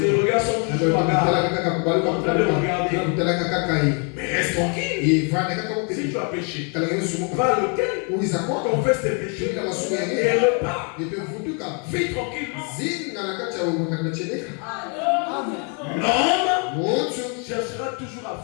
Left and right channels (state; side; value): quieter; right; 37.2 dB